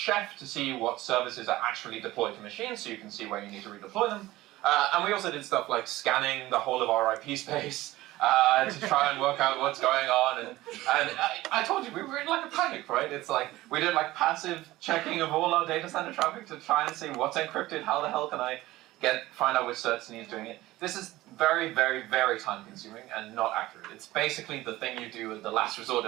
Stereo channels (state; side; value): quieter; left; 17.4 dB